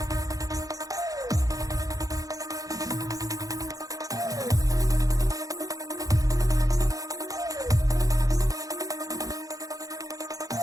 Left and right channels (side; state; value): left; late; 0.17 ms